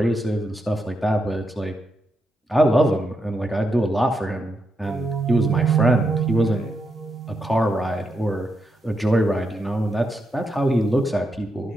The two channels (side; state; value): both; normal; correlation 0.83